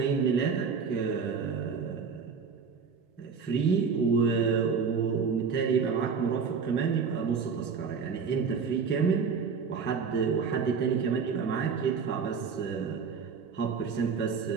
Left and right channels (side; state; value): left; quieter; 5.8 dB